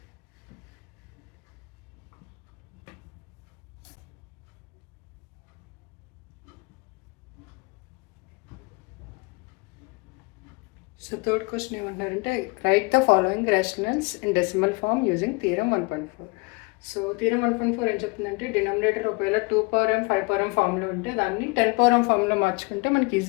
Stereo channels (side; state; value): right; quieter; 28.2 dB